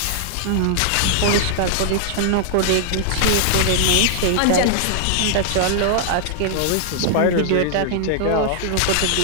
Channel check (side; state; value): both; different; correlation -0.01